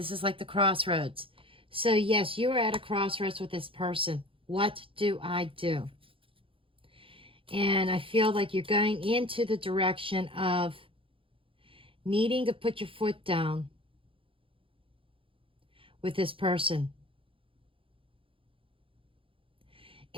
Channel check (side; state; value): left; late; 0.26 ms